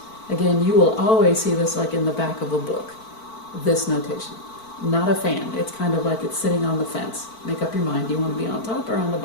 Again, you will always see this like in the back of a book, this notation. Not a fan. It's kind of like it's sitting on the fence. Make up your mind. Do you want to be on top or on the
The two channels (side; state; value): right; late; 4.5 ms